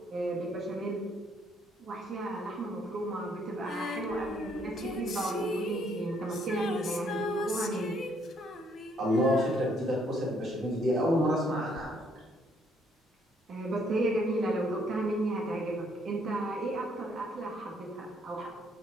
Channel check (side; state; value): both; normal; correlation 0.68